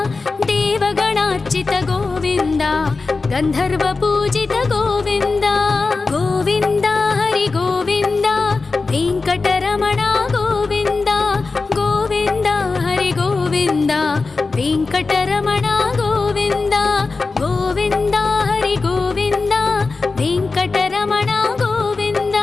ದೇವಗಣಾರ್ಚಿತ ಗೋವಿಂದ ಗಂಧರ್ವ ಪೂಜಿತ ಗೋವಿಂದ ಗೋವಿಂದ ಹರಿ ಗೋವಿಂದ ವೆಂಕಟರಮಣ ಗೋವಿಂದ ಗೋವಿಂದ ಹರಿ ಗೋವಿಂದ ವೆಂಕಟರಮಣ ಗೋವಿಂದ ಗೋವಿಂದ ಹರಿ ಗೋವಿಂದ ವೆಂಕಟರಮಣ ಗೋವಿಂದ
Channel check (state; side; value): quieter; right; 4.0 dB